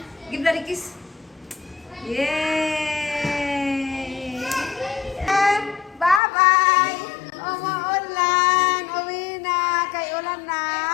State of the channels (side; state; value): right; drops out; at 6.2 s